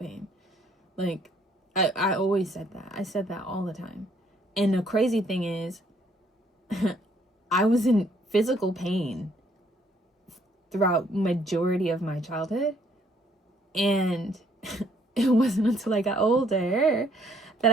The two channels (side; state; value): both; normal; correlation 0.66